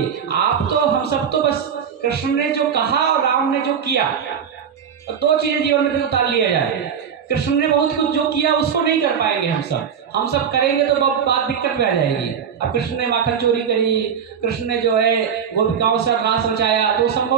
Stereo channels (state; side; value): quieter; left; 7.6 dB